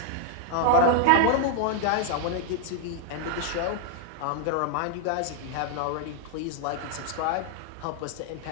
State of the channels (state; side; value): different; both; correlation 0.00